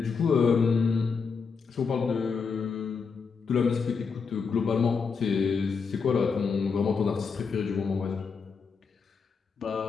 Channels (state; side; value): quieter; right; 5.4 dB